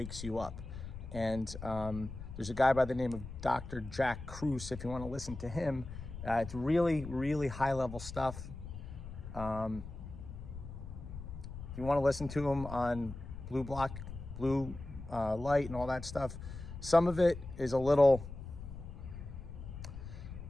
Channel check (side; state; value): left; noise; rumble, 10 dB below the sound